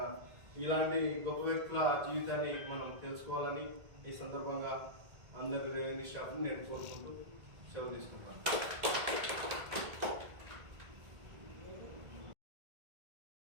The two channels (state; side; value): late; left; 1.8 ms